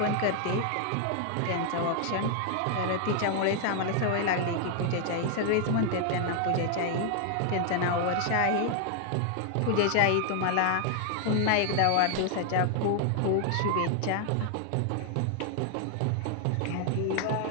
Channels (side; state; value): both; different; correlation 0.00